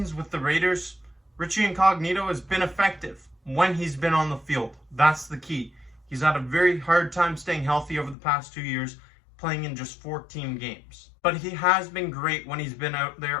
with the Raiders, Richie Incognito has been effective when he's been on the field. That's the key. He's had a very hard time staying healthy over the past 2 years, playing in just 14 games. But he has been great when he's been out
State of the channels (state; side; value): drops out; right; at 8.2 s